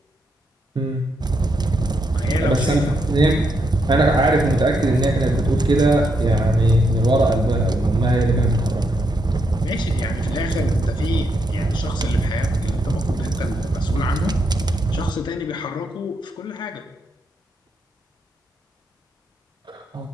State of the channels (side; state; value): both; normal; correlation 0.79